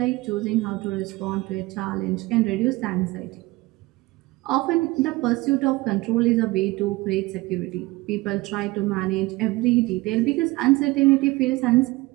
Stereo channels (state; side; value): quieter; left; 20.9 dB